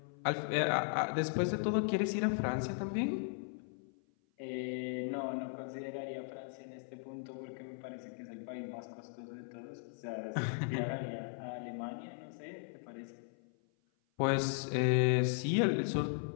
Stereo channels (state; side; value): silent; right; 53 dB below the other